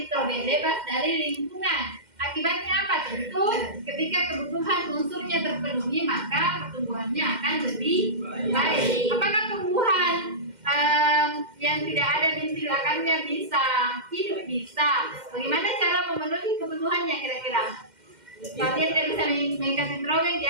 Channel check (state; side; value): late; left; 2.1 ms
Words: bebas dari lingkungan. Akibatnya apa? Tentu ketika kebutuhan unsurnya terpenuhi, maka pertumbuhannya akan lebih baik. Apakah tumbuhan yang tidak ada bintil akarnya bisa hidup? Bisa. Bagaimana cara memenuhi kebutuhannya kira-kira? Kalau dia tidak bisa mengikat nitrogen,